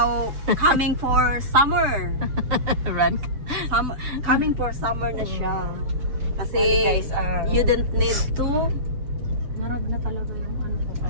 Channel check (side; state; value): left; late; 7.3 ms